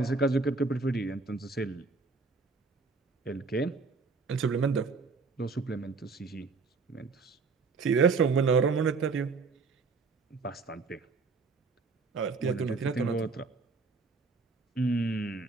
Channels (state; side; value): quieter; left; 4.4 dB